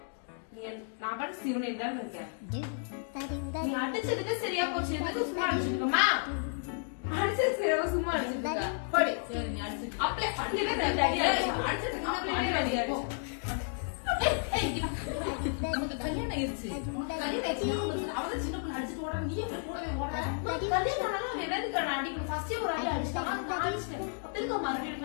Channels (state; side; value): silent; right; 56 dB below the other